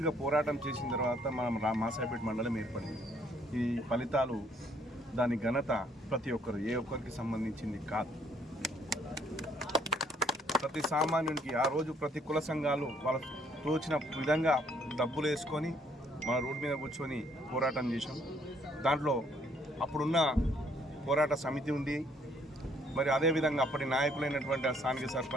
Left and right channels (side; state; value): both; normal; correlation 0.65